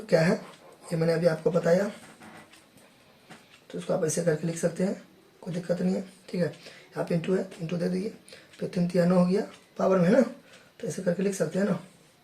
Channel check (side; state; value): both; identical; correlation 1.00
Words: क्या है, ये मैंने अभी आपको बताया, तो इसको आप ऐसे करके लिख सकते हैं, कोई दिक्कत नहीं है, ठीक है। यहाँ पे इंटू है तो इंटू दे दीजिए, फिर 3 3 9 हो गया पावर में है ना, तो ऐसे करके लिख सकते हैं ना